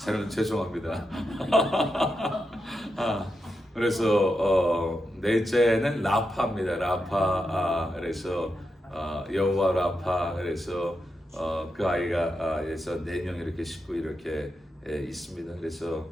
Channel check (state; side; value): normal; both; correlation 0.86